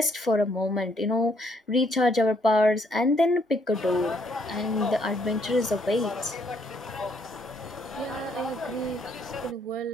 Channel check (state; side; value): normal; both; correlation 0.70